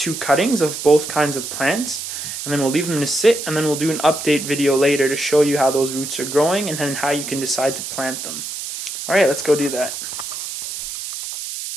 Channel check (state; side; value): noise; right; hiss, 7 dB below the sound